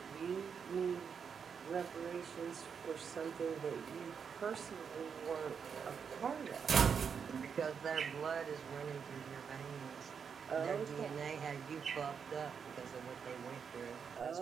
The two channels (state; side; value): quieter; left; 6.6 dB